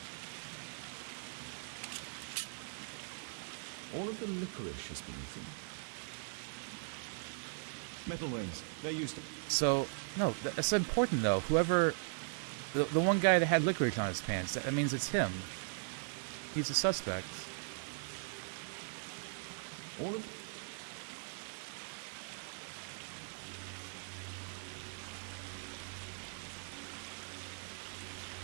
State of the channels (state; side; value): silent; left; digital silence